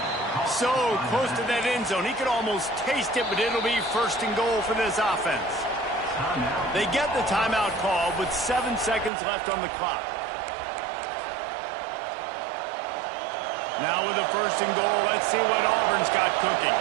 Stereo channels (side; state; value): left; drops out; at 9.1 s